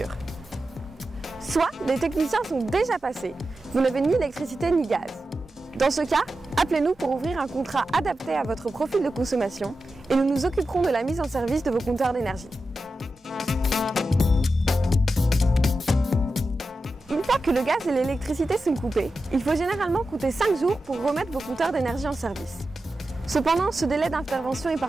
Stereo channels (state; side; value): normal; both; correlation 0.91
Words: Soit les techniciens sont déjà passés, vous n'avez ni électricité ni gaz. Dans ce cas, appelez-nous pour ouvrir un contrat adapté à votre profil de consommation et nous nous occuperons de la mise en service de vos compteurs d'énergie. Une fois que le gaz et l'électricité sont coupés, il faut généralement compter 5 jours pour remettre vos compteurs d'énergie en service. Cependant, ce délai d'intervention est